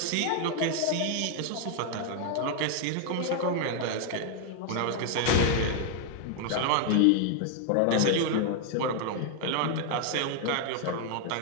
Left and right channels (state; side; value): different; both; correlation 0.00